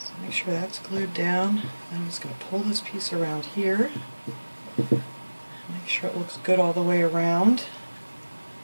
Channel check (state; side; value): inverted; both; correlation -1.00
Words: make sure that's glued down. I'm just going to pull this piece around here. Make sure it looks good all the way around.